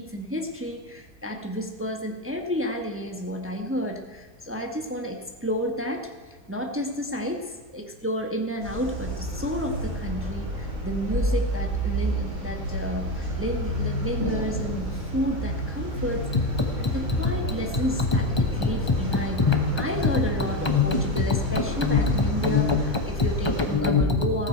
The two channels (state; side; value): normal; both; correlation 0.16